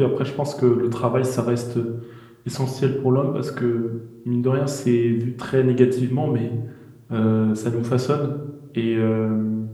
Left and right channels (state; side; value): identical; both; correlation 1.00